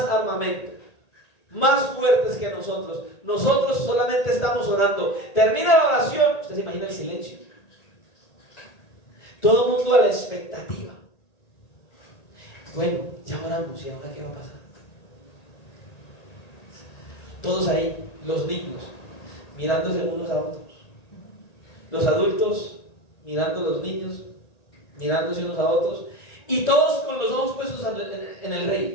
armamento, más fuertes que nosotros. Nosotros solamente estamos orando. Termina la oración, usted se imagina el silencio. Todo el mundo a la expectativa. Bueno, ya oramos, ¿y ahora qué va a pasar? Todos ahí, los niños, mirándose unos a otros. Los adultos mirando a los niños, mirándose unos a otros. Y todos con los ojos puestos en el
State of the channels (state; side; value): late; right; 1.8 ms